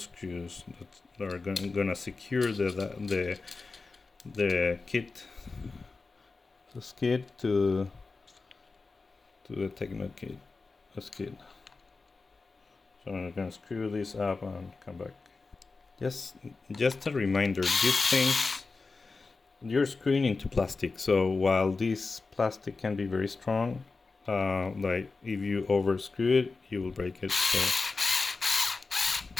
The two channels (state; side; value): quieter; right; 4.0 dB